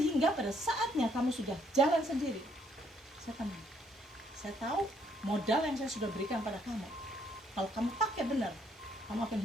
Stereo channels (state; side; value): normal; both; correlation 0.69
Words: pada saatnya kamu sudah jalan sendiri, saya tenang. Saya tahu modal yang saya sudah berikan pada kamu, kalau kamu pakai benar, kamu akan